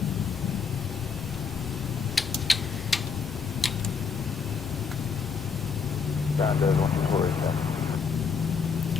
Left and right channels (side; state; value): right; quieter; 5.7 dB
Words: Ground does 124 is that.